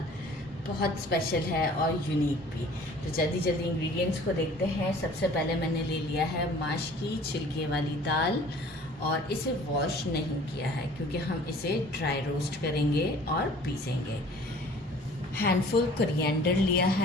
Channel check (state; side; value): normal; both; correlation 0.50